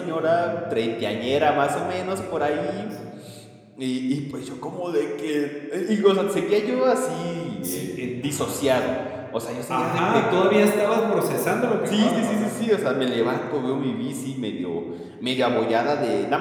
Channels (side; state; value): both; identical; correlation 1.00